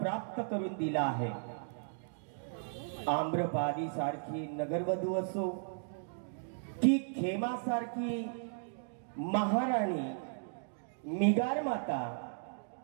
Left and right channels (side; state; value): left; silent; digital silence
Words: प्राप्त करून दिला आहे। आम्रपाली सारखी नगरवधू असो की खेमा सारखी महाराणी, मिगार माता,